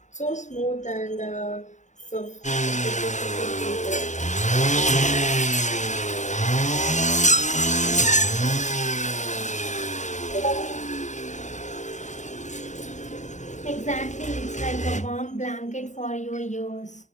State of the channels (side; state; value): right; late; 0.35 ms